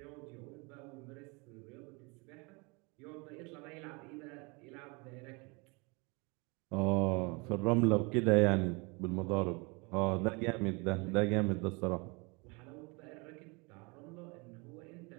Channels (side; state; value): left; quieter; 29.1 dB